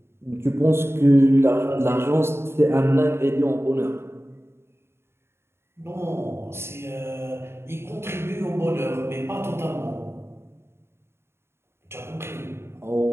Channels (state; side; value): late; left; 0.12 ms